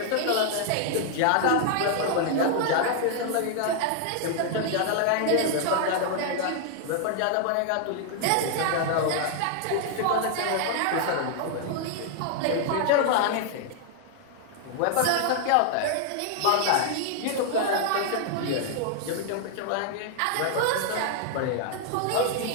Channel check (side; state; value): both; different; correlation 0.00